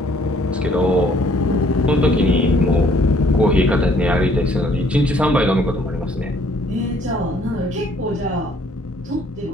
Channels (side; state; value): both; normal; correlation 0.62